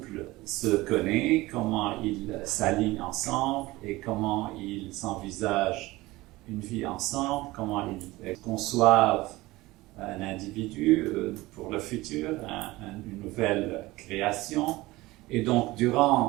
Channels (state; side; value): quieter; left; 19.7 dB